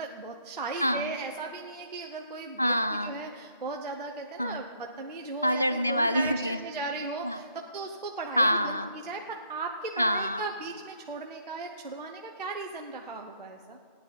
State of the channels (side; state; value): both; inverted; correlation -0.67